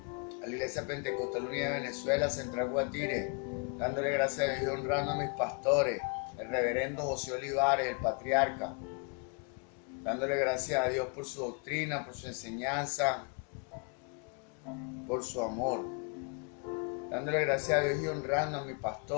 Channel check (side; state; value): right; quieter; 34.9 dB